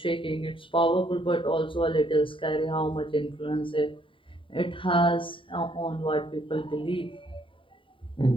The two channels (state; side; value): late; right; 0.25 ms